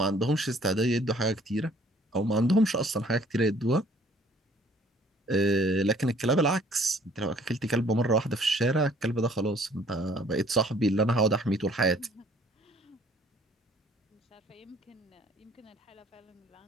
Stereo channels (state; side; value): normal; both; correlation 0.58